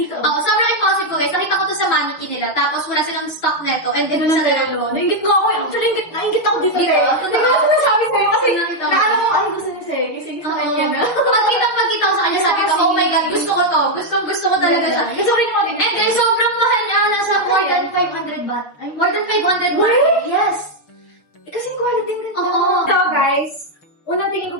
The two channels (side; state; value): right; late; 6.4 ms